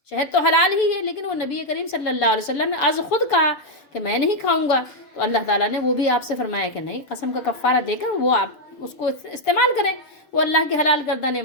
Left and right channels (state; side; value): late; right; 6.9 ms